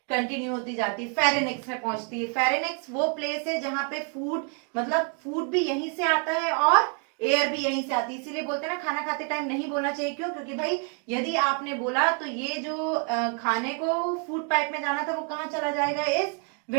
कंटिन्यू होती जाती है, फेरेनिक्स में पहुंचती है। फेरेनिक्स वो प्लेस है जहां पे फूड, मतलब फूड भी यहीं से आता है और एयर भी यहीं से आती है। इसीलिए बोलते हैं ना खाना खाते टाइम नहीं बोलना चाहिए। क्यों? क्योंकि भाई यदि आपने बोला तो ये जो खाने को फूड पाइप में जाना था वो कहाँ चला जाएगा, इस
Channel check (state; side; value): quieter; left; 38.9 dB